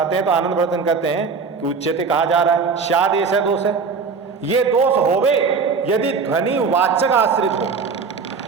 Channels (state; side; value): quieter; left; 5.1 dB